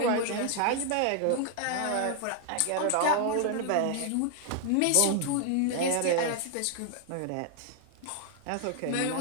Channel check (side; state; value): both; different; correlation 0.00